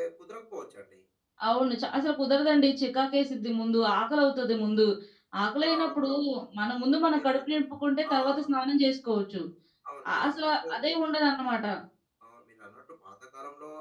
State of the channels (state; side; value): identical; both; correlation 1.00